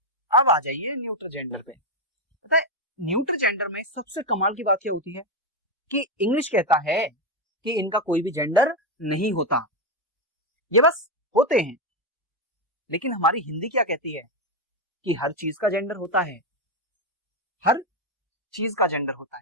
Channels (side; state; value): both; normal; correlation 0.07